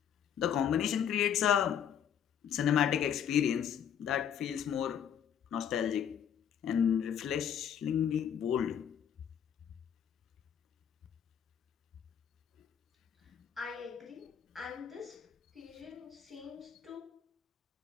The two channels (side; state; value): right; quieter; 8.8 dB